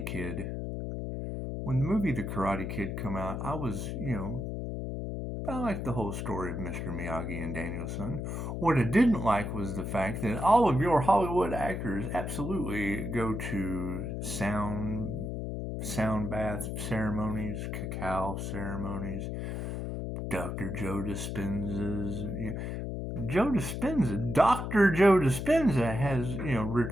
Kid? When the movie The Karate Kid come out, I was, I liked the whole story of Mr. Miyagi and Daniel-san. What I didn't like was the fact that all of your Hollywood actors absolutely go to sound bath ceremonies, cacao ceremonies, Dr. Joe Dispenza's. Dr. Joe Dispenza has,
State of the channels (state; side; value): noise; left; hum, 4 dB below the sound